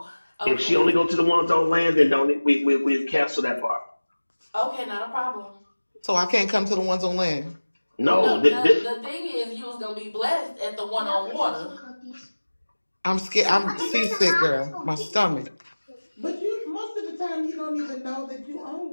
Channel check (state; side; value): inverted; both; correlation -1.00